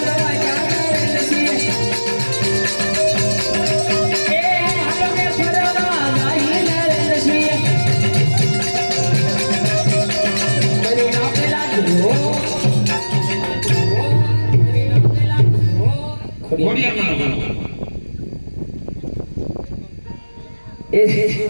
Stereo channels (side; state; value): both; inverted; correlation -1.00